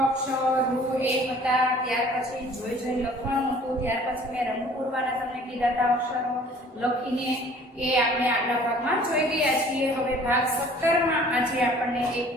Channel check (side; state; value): both; normal; correlation 0.52